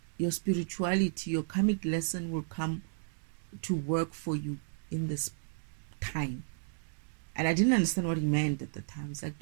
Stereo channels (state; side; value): silent; left; digital silence